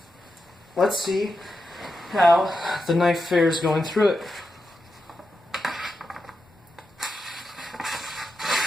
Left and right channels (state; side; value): normal; both; correlation 0.88